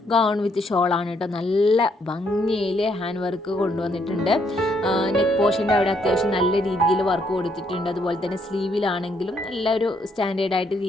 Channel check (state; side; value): normal; both; correlation 0.72